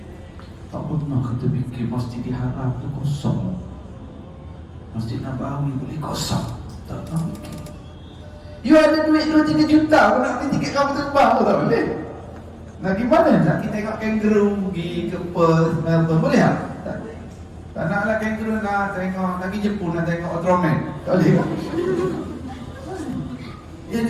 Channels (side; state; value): both; identical; correlation 1.00